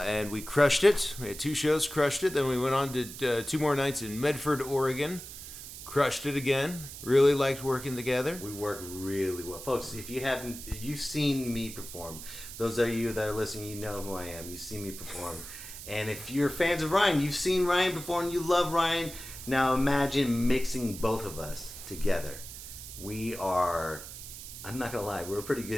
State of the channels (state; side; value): noise; right; hiss, 12 dB below the sound